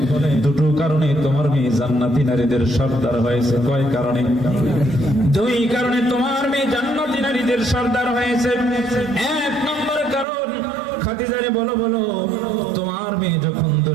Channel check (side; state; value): left; drops out; at 10.2 s